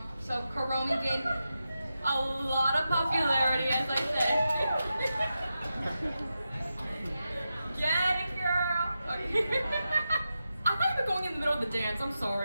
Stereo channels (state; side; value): inverted; both; correlation -0.90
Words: So Kuromi gained a lot of popularity, as I said. Get it, girl. Okay. I thought you were going in the middle of the dance. I'm